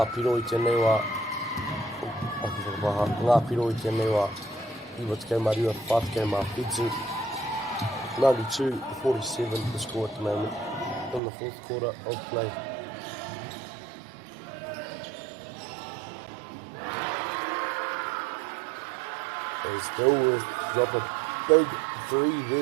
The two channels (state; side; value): drops out; left; at 11.2 s